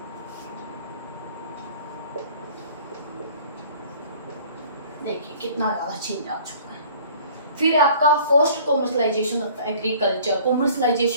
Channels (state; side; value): inverted; both; correlation -0.51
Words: देखिए कितना ज़्यादा चेंज आ चुका है। फिर आपका first commercialisation of agriculture.